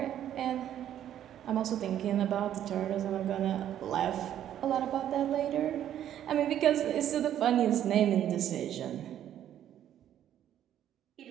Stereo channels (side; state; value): left; quieter; 10.9 dB